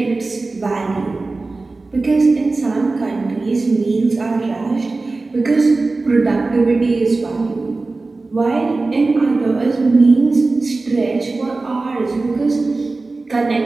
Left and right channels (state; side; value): quieter; left; 3.5 dB